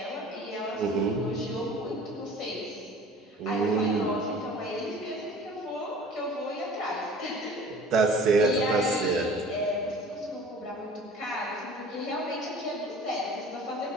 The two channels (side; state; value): both; normal; correlation 0.45